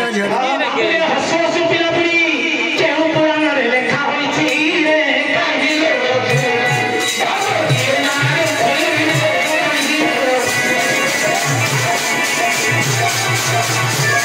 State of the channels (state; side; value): identical; both; correlation 1.00